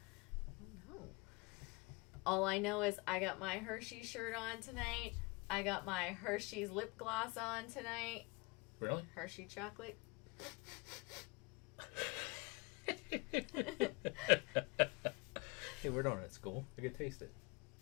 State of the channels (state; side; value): quieter; right; 27.2 dB